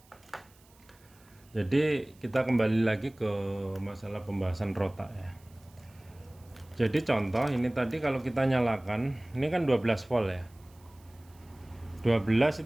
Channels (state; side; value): noise; right; hiss, 29 dB below the sound